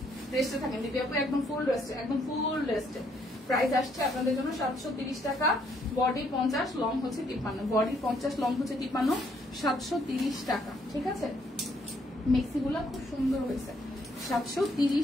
রেস্টে থাকেন দিদি আপু, একদম ফুল রেস্টে। প্রাইস আসছে আপনাদের জন্য 730 টাকা, বডি 50, লং হচ্ছে 53, বডি 50, লং হচ্ছে 53, 730 টাকা। ঠিক আছে, মেক্সি গুলা খুব সুন্দর হয়েছে,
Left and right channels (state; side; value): normal; both; correlation 0.69